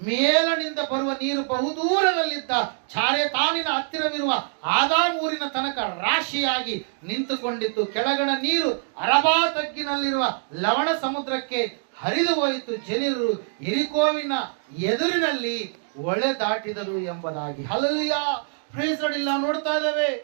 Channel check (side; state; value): left; silent; digital silence